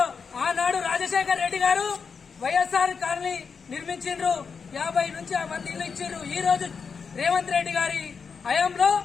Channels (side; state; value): right; quieter; 5.7 dB